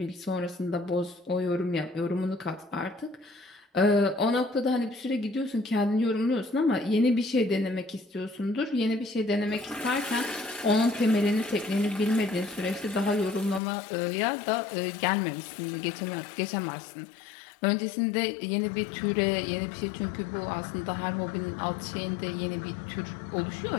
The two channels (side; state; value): right; drops out; at 13.6 s